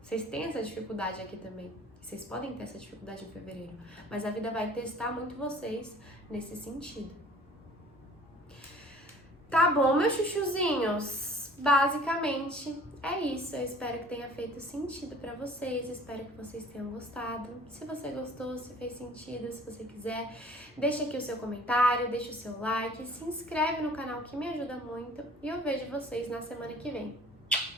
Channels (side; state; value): both; normal; correlation 0.50